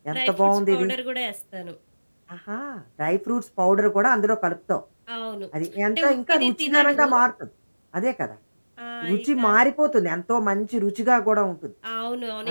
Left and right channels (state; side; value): inverted; both; correlation -1.00